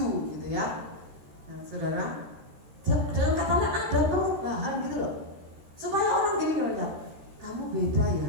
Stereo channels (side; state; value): left; late; 13 ms